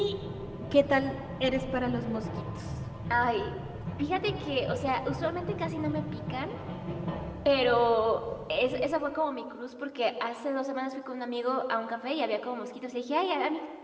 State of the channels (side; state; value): both; identical; correlation 1.00